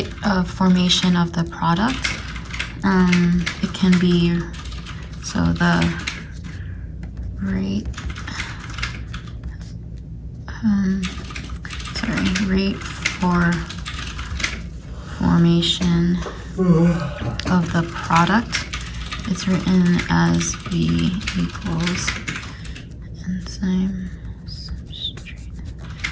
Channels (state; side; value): identical; both; correlation 1.00